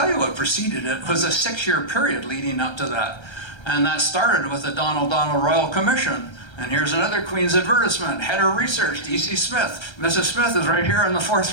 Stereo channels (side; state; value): right; late; 1.3 ms